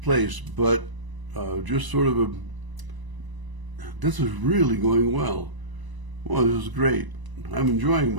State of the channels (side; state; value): left; late; 1.0 ms